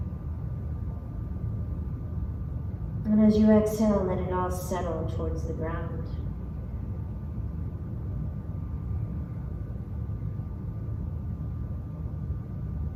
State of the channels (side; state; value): both; identical; correlation 1.00